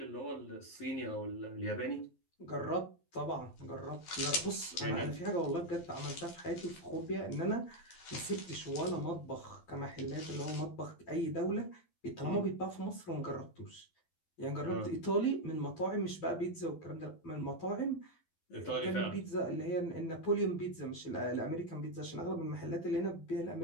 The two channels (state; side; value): late; right; 12 ms